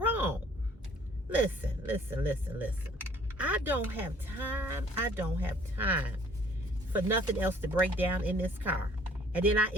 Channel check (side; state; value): both; normal; correlation 0.57